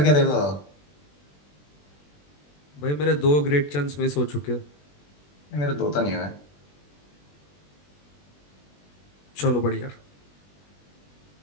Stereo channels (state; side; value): late; right; 20 ms